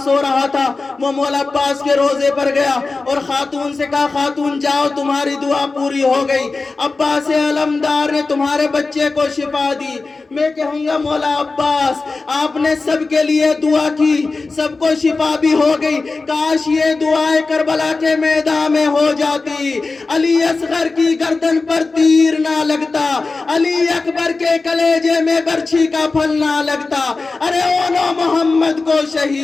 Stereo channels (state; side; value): quieter; right; 3.8 dB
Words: سو رہا تھا وہ مولا عباس کے روزے پر گیا اور خاتون سے کہا خاتون جاؤ تمہاری دعا پوری ہو گئی، عباس علمدار نے تمہارے بچے کو شفا دی۔ میں کہوں گا مولا عباس آپ نے سب کے لیے دعا کی، سب کو شفا بھی ہو گئی، کاش یہ دعائیں کربلا کے میدان میں ہو جاتی، علی اصغر کی گردن پر تیر نہ لگتا، علی اکبر کے کلیجے میں برچھی کا پھل نہ لگتا، ارے اونو محمد کو